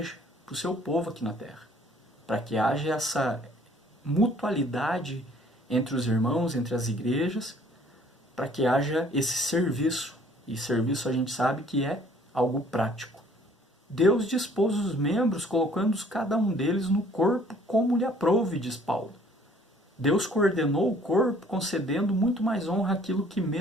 para o seu povo aqui na terra. Para que haja essa mutualidade entre os irmãos, entre as igrejas, para que haja esse serviço. E serviço a gente sabe que é algo prático. Deus dispôs os membros, colocando cada um deles no corpo como lhe aprouve, diz Paulo. Deus coordenou o corpo, concedendo muito mais honra àquilo que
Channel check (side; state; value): both; normal; correlation 0.57